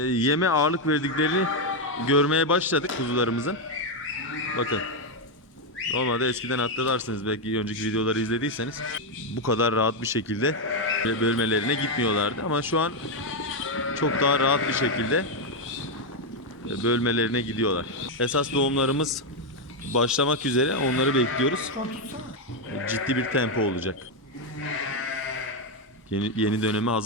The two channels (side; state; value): both; normal; correlation 0.04